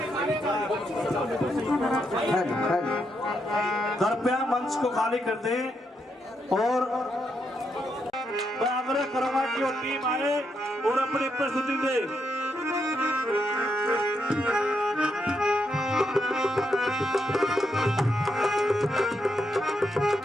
कृपया मंच को खाली कर दें और मैं आग्रह करूंगा कि वो टीम आए और अपनी प्रस्तुति दे।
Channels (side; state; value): both; normal; correlation 0.80